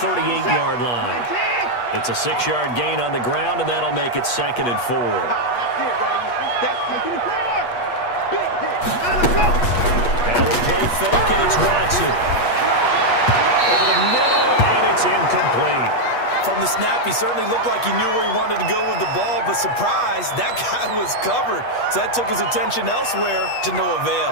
line. It's a 6-yard gain on the ground, and that'll make it 2nd and 4. Now we'll play fake, and it's Watson. Over the middle, and it's incomplete. From the snap, he certainly looked like he knew where he wanted to go with the ball, but surprise, that guy was covered. So that took his attention elsewhere to no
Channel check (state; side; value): late; right; 8.3 ms